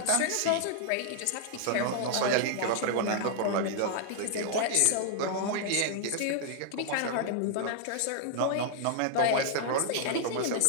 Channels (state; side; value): different; both; correlation 0.00